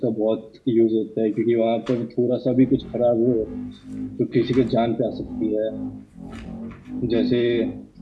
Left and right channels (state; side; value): identical; both; correlation 1.00